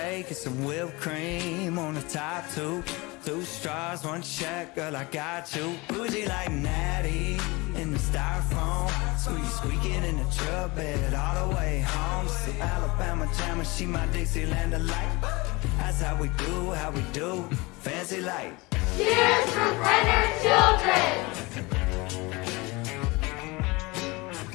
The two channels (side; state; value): right; quieter; 24.3 dB